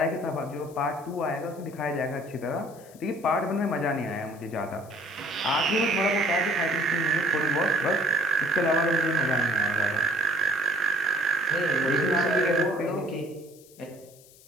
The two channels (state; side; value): noise; left; hiss, 24 dB below the sound